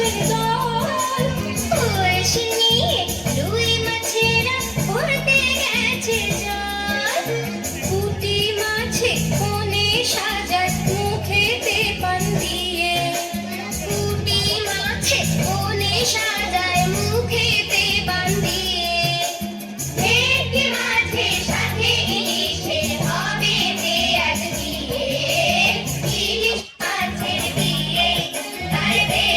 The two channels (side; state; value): both; identical; correlation 1.00